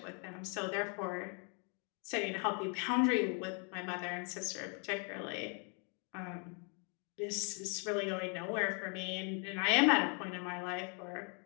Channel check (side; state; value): right; quieter; 37.6 dB